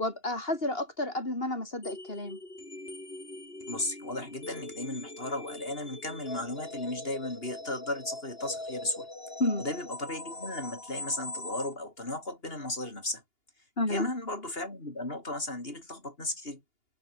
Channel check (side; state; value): right; late; 2.8 ms